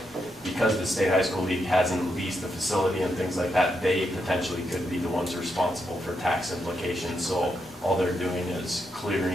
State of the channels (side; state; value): both; normal; correlation 0.82